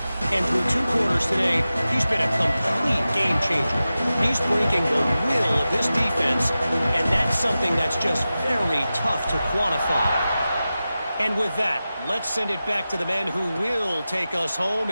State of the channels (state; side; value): inverted; both; correlation -0.94